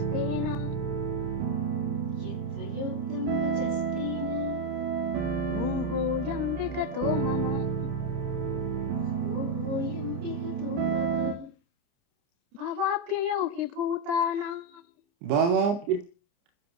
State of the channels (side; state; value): left; late; 29 ms